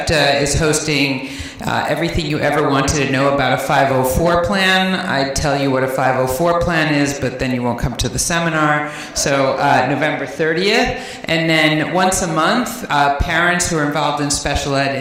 is hosting everything you ever wanted to know about a 504 plan. I'd tell you what a 504 plan is, but then you won't come to the seminar. So November 30th. And then once a month, parents who are involved in special ed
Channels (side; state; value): both; identical; correlation 1.00